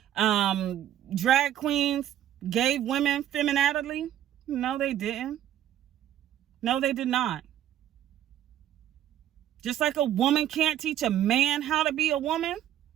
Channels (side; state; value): left; quieter; 11.6 dB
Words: drag queens gave women femininity. No, they didn't. No, they did not. Just like a woman can't teach a man how to be a woman